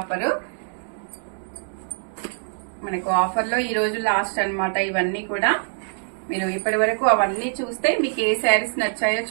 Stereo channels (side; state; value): left; silent; 63 dB below the other